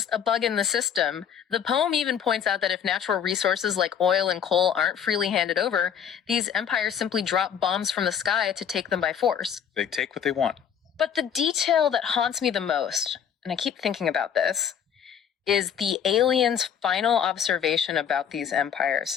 a bug in the system. The poem even points out that if natural resources like oil and coal aren't freely handed over, these empires simply drop bombs from the sky to take them by force. They take what they want. But the detail that haunts me the most, and I keep thinking about this, is the alien's final observation about these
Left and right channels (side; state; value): right; quieter; 8.4 dB